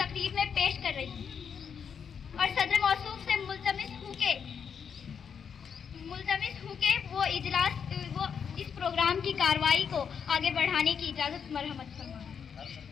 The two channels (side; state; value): right; quieter; 7.0 dB